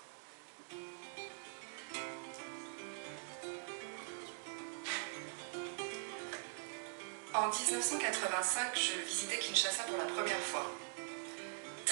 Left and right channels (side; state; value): left; silent; digital silence